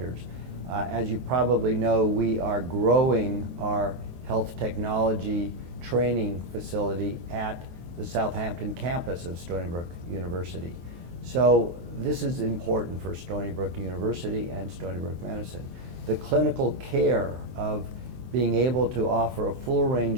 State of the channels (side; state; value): left; late; 23 ms